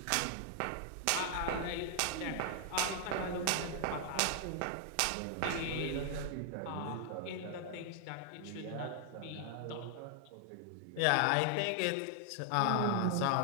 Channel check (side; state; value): both; different; correlation 0.00